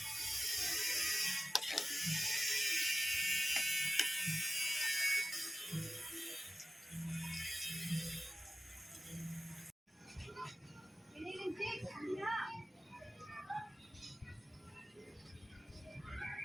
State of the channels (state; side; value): normal; both; correlation 0.95